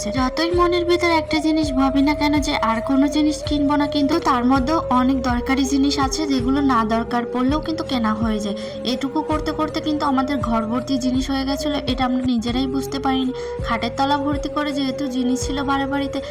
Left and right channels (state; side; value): identical; both; correlation 1.00